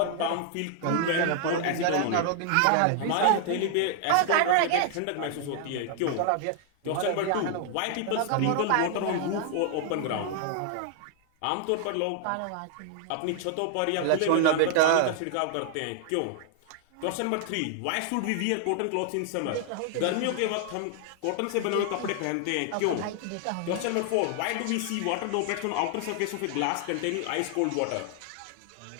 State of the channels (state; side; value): different; both; correlation 0.00